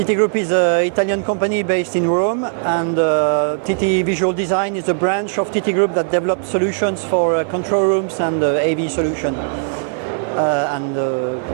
Group is an Italian company based in Rome, and TT Visual Design is a branch of TT Group that develops solutions for control rooms and AV solution and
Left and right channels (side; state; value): left; silent; digital silence